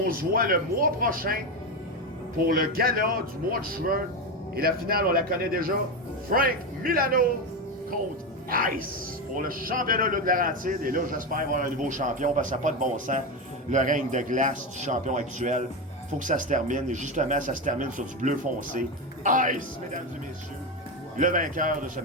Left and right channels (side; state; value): both; normal; correlation 0.14